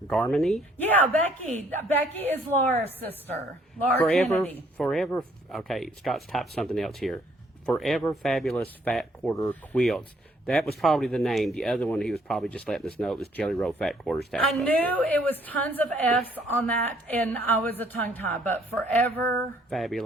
Yeah, Becky. Becky is Laura's sister. Laura Kennedy. Forever, okay, Scott's typed something else here. Forever Fabulous Fat Quarter Quilts. That was probably the name. The other one, he was probably just letting us know it was Jelly Roll Fat Quarter Stash. I knew it was tons of F's on that, and I was a tongue tie, but Forever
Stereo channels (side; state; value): both; normal; correlation 0.64